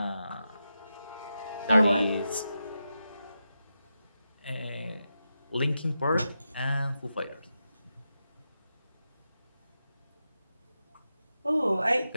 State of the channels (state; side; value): inverted; both; correlation -0.89